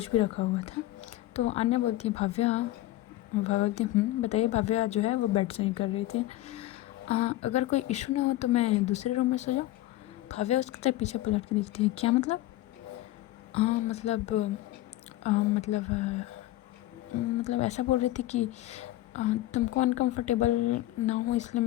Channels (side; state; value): right; quieter; 16.0 dB